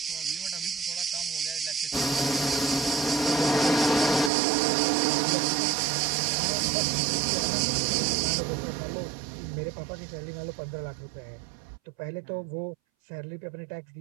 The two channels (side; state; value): left; drops out; at 4.3 s